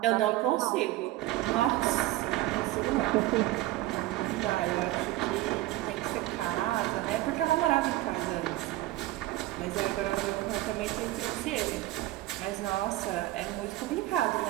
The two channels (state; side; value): quieter; left; 16.8 dB